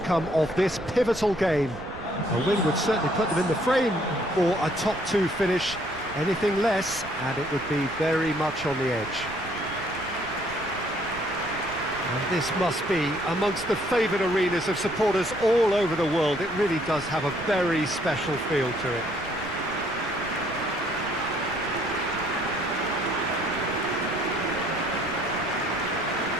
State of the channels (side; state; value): right; noise; rumble, 16 dB below the sound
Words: of this pivotal game. A win would certainly put them in the frame for a top two finish. Anything less, and it would be very much on the edge. And this must be amongst the favoured arenas of supporters all over the world. It really does have a very special feel to it.